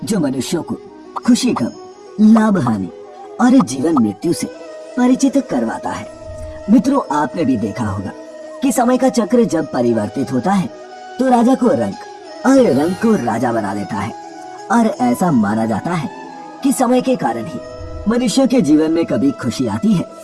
जो मनुष्यों को खुशी, गम, लाभ, हानि और जीवन मृत्यु से परिचित करवाता है। मित्रों, आपने भी देखा होगा कि समय का चक्र जब परिवर्तित होता है तो राजा को रंक और रंक को राजा बना देता है। और ऐसा माना जाता है कि समय के कारण ही मनुष्य के जीवन में कभी खुशी आती है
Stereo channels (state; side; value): identical; both; correlation 1.00